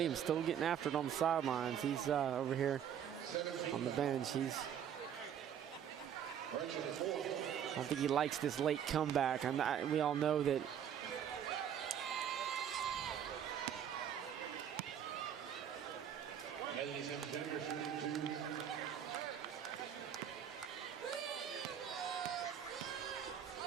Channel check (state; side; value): quieter; left; 9.0 dB